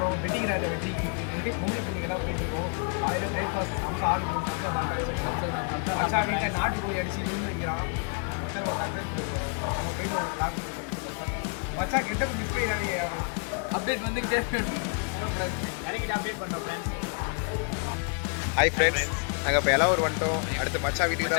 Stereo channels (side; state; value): right; quieter; 39.8 dB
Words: வெட்டிங் ராஜா வெற்றி வீட்டுக்கு கும்பலி பிள்ளைங்கெல்லாம் போயிட்டு இருக்கோம். காலையில் பிரேக்ஃபாஸ்ட் சம்சா ஆர்டர் பண்ணி சம்சா சாப்பிட்டாச்சு. மச்சான் வீட்டில் நாட்டு கோழி அடிச்சு இருந்து வைக்கிறான். மச்சான் ஒரு சர்ப்ரைஸ் கொடுக்குறோம். அங்கே போயிட்டு ஒரு பிளாக் மச்சான் கெட்டப்போ மிஸ் பண்ணிடாதீங்க யாரும். அப்டேட் வந்துக்கிட்டே இறங்கிட்டு அப்டேட் பண்ணுறோம் ஃப்ரெண்ட்ஸ். ஹாய் ஃப்ரெண்ட்ஸ், நாங்கள் இப்போ எல்லாம் வந்துட்டோம். அடுத்து மச்சான் வீட்டுக்கு